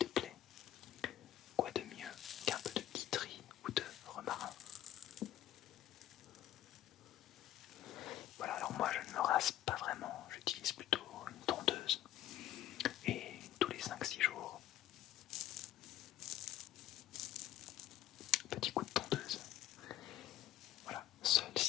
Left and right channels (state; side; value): quieter; right; 12.8 dB